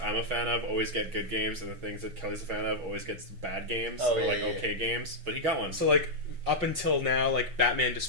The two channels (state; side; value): late; left; 5.5 ms